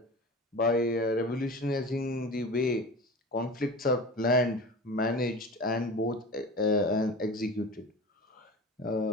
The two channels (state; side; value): normal; both; correlation 0.33